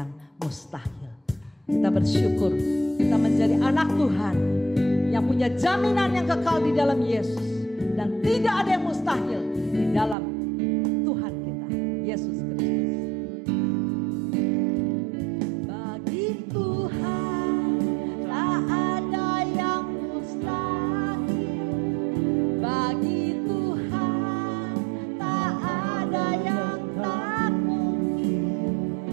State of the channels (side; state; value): left; drops out; at 10.2 s